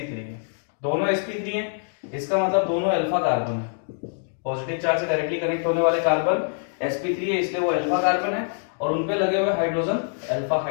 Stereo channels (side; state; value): right; silent; digital silence